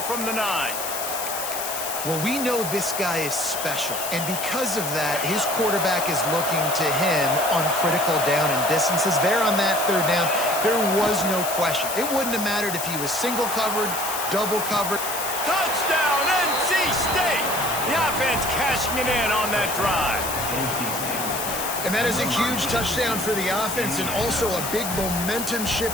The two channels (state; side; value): noise; left; hiss, 5 dB below the sound